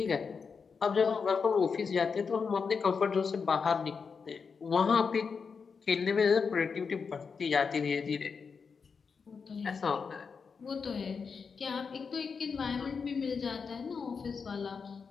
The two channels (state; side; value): quieter; right; 5.6 dB